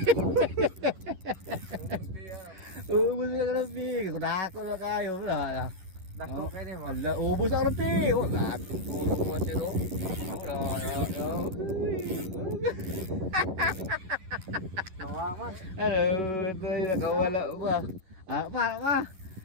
Bunda rupi, kuda ko na kayo lah. Dako kayo ni mo. Ala, ubos ang rupi. Oh, dako ko si lo. Nawaman. Ano, ito yung nakawala ba? Ah, pa.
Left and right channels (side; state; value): left; late; 11 ms